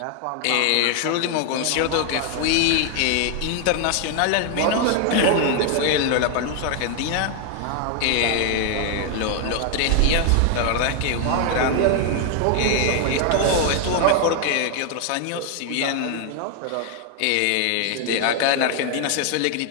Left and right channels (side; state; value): both; different; correlation 0.00